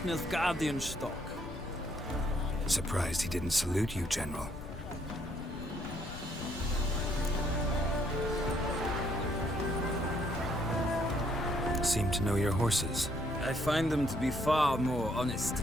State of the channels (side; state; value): left; noise; rumble, 11 dB below the sound